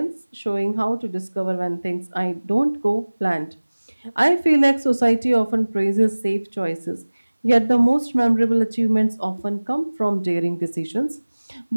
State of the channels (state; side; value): inverted; both; correlation -1.00